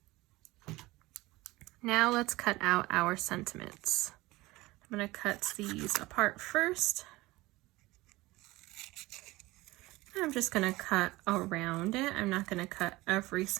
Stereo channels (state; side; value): quieter; left; 19.9 dB